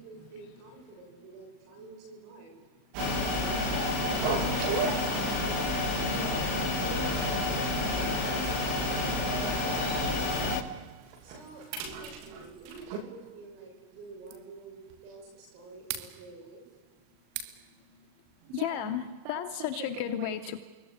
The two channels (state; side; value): late; left; 39 ms